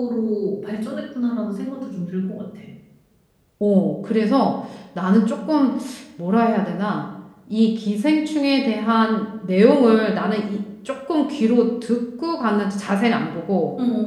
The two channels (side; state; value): both; identical; correlation 1.00